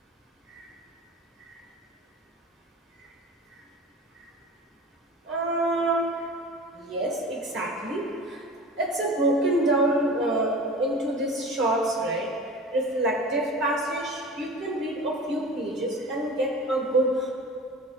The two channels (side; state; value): both; normal; correlation 0.37